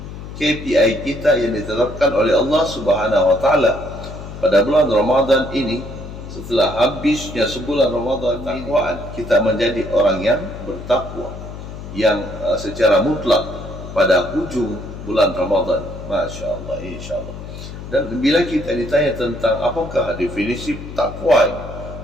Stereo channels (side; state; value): left; noise; hum, 11 dB below the sound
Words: KPI kita yang ditetapkan oleh Allah Subhanahu wa taala pada bulan Ramadan ini. Setelah habisnya sebulan Ramadan, takwaan kita menjadi orang yang bertakwa, yang secara mutlak pada hujung bulan Ramadan. Masya Allah, insya Allah. Dan bila kita ditanya tentang apakah definisi takwa,